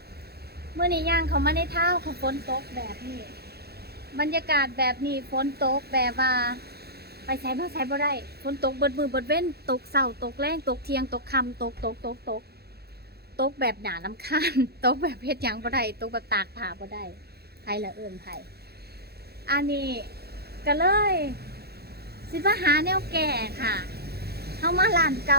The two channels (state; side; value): late; left; 0.46 ms